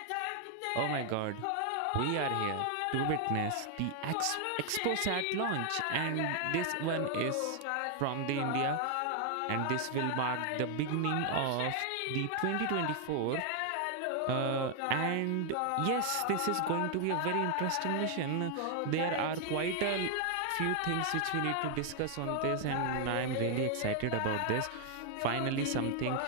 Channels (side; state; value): both; different; correlation 0.00